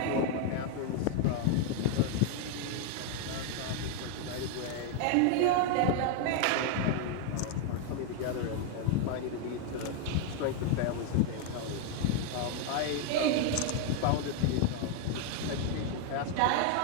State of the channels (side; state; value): both; different; correlation 0.00